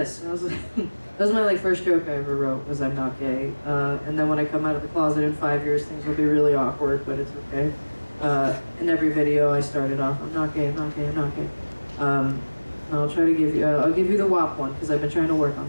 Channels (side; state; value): both; inverted; correlation -1.00